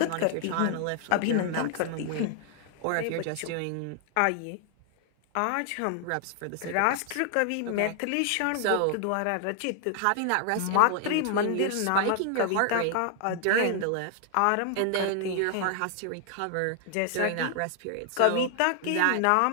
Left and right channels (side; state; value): both; different; correlation 0.00